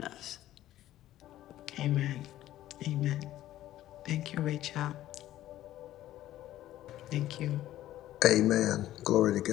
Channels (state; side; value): quieter; right; 13.8 dB